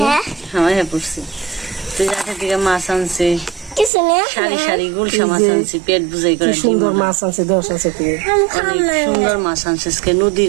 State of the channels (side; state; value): left; drops out; at 3.9 s